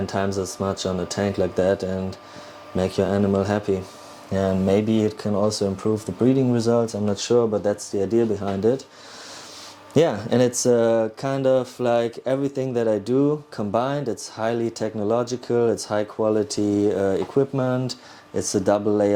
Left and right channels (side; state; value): both; identical; correlation 1.00